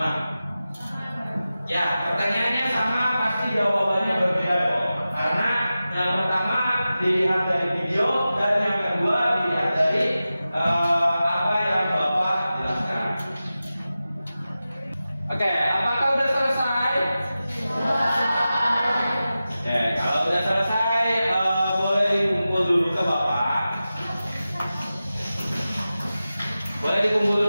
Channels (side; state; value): both; inverted; correlation -0.94